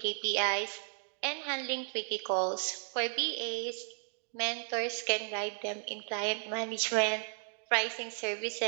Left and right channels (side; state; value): left; silent; 55 dB below the other